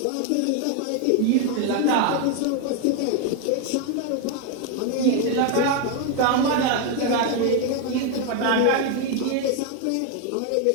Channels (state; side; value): different; both; correlation 0.01